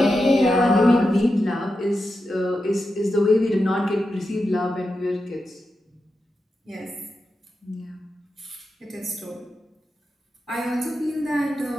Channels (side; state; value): both; normal; correlation 0.89